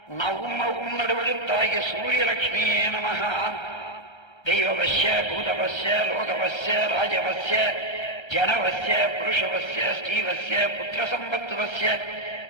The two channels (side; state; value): right; late; 1.3 ms